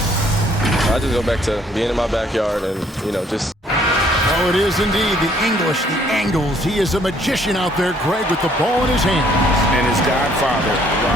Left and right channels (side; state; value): both; normal; correlation 0.63